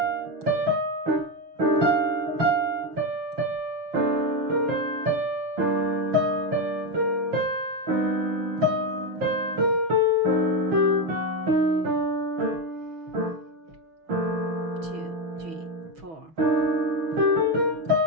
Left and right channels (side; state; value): left; late; 6.0 ms